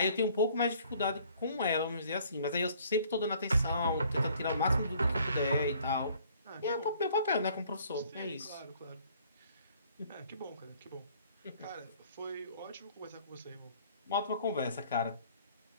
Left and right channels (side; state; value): both; inverted; correlation -0.58